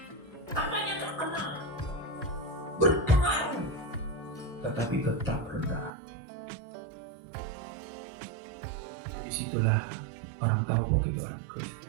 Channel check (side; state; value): left; drops out; at 5.9 s